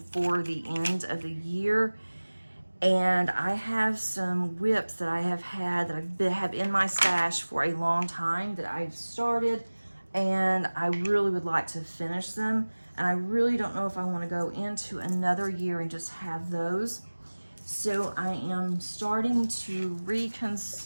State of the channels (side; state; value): both; inverted; correlation -1.00